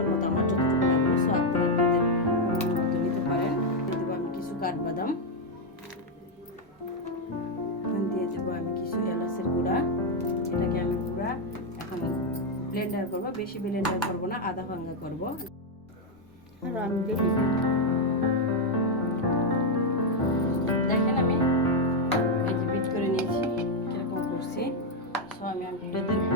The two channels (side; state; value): both; normal; correlation 0.01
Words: মতো, আমার যতটুকু লাগবে। সো আপনারা আপনাদের মতো নিতে পারেন। দিয়ে দেবো আমি কিছু কাঠবাদাম, দিয়ে দেবো আমি কিছু এলাচের গুঁড়া। এটাকে আমি পুরা এখন ব্লেন্ডার করবো, বেশি ব্লেন্ডার করবো না, আধা ভাঙ্গা করবো। আর আমি দেখেন আমি এই যে বিট করে নিয়েছি, এরকম করছি। সো আমি আপনাদের